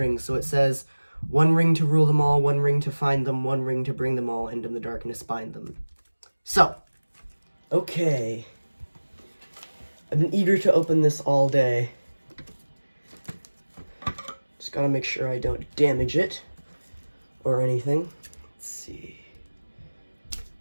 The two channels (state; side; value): inverted; both; correlation -1.00